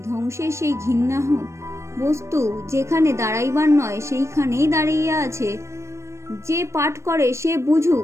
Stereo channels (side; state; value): left; late; 0.13 ms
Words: ধ্বংসের সেই ঘৃণ্য বস্তু যেখানে দাঁড়াইবার নয় সেইখানেই দাঁড়াইয়া আছে, যে পাঠ করে সে বুঝুক।